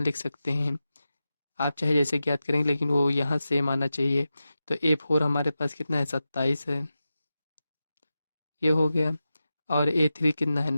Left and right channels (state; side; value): inverted; both; correlation -0.92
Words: सकते हैं। आप चाहे जैसे ज्ञात करेंगे, लेकिन वो यहाँ सेम आना चाहिए। तो A4 हमारे पास कितना है, 27 है। ये हो गया। और A3 कितना है,